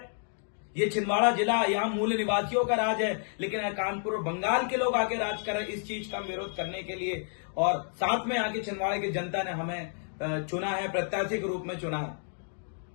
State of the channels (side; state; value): right; silent; 58 dB below the other